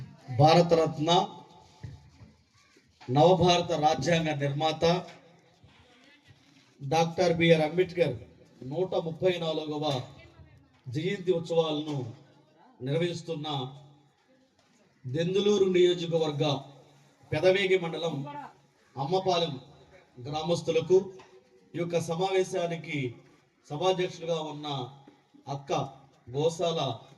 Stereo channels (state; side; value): identical; both; correlation 1.00